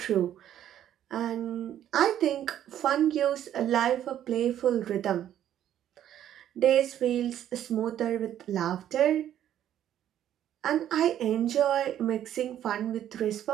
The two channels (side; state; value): left; quieter; 11.0 dB